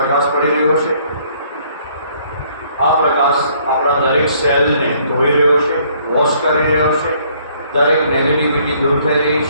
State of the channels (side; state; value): both; inverted; correlation -0.63